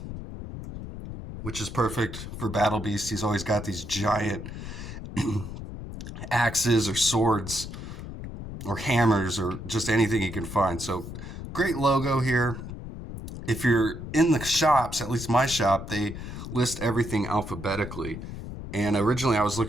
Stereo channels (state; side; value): noise; left; rumble, 9 dB below the sound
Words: which is perfect for Battle Beast. He's always got these giant axes or swords or hammers or just anything he can find. So great logo here. If you're in the shops, at least my shop, they list everything alphabetically. And originally I was